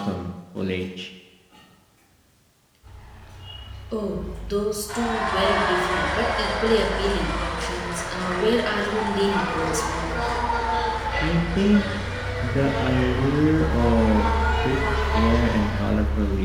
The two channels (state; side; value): identical; both; correlation 1.00